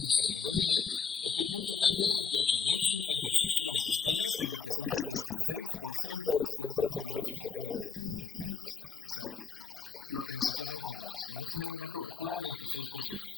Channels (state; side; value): quieter; right; 5.6 dB